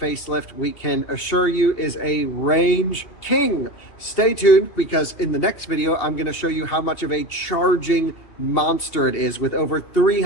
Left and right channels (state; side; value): late; right; 2.7 ms